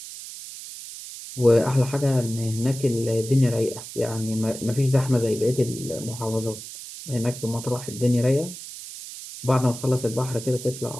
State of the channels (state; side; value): noise; right; hiss, 12 dB below the sound